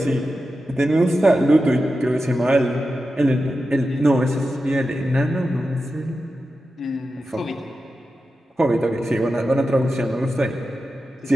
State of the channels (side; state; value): both; normal; correlation 0.91